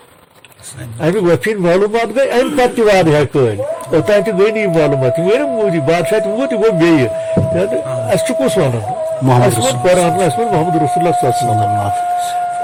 امہِ گۄپھِ ہٕنٛدۍ معلوٗمات گٔے امہِ پتہٕ تہِ واریاہ کٲلۍ اوٚتانۍ تہِ گٔے نہٕ یِم معلوٗمات یِم گٔے نہٕ موٗدی بادشاہ تہِ ووت یہِ گوٚو بیٚیہِ اسہِ چھُ کُس ونان اسہِ ووٚن قرآن اسہِ ووٚن محمد رسول اللہ صلی اللہ علیہ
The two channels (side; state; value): both; identical; correlation 1.00